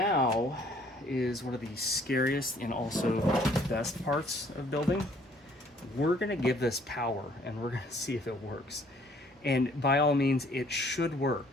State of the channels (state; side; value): normal; both; correlation 0.60